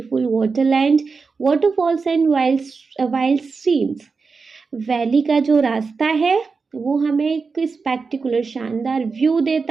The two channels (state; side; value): quieter; left; 4.7 dB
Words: waterland, waterfalls and wild streams. Valley का जो रास्ता है वो हमें एक स्पेक्टिकुलर शानदार व्यू